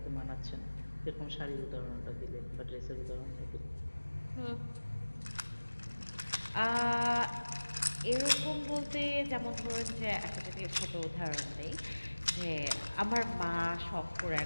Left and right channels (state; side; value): inverted; both; correlation -1.00